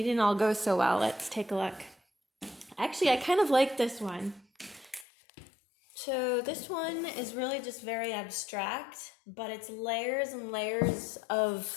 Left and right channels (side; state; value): right; drops out; at 5.1 s